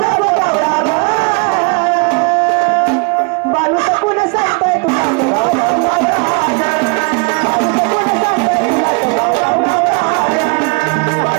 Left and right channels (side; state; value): left; quieter; 33.1 dB